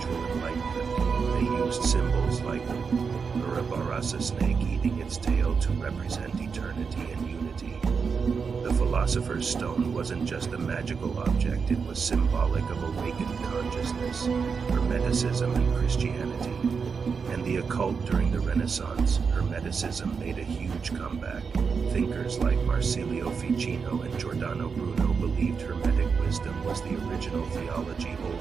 enlightenment. They used symbols like the Ouroboros, a snake eating its tail, to represent eternity and unity. The philosopher's stone wasn't just a magical object, it was symbolic of awakened consciousness, Hermeticism and Christianity. And the occult during the Renaissance, Hermeticism made a huge comeback. Thinkers like Marsilio Ficino and Giordano Bruno believed Hermetic wisdom was the original theology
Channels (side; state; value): left; quieter; 5.6 dB